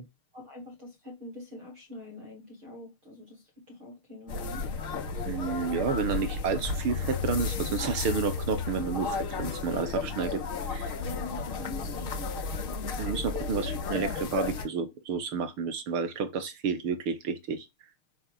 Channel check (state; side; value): late; left; 6.5 ms